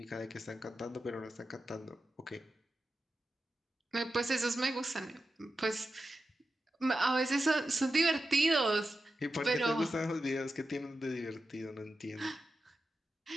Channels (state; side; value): normal; both; correlation 0.91